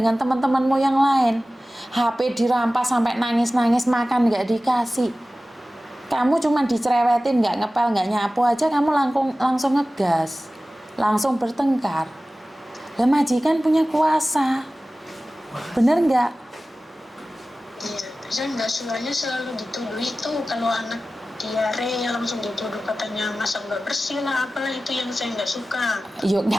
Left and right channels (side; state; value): both; normal; correlation 0.96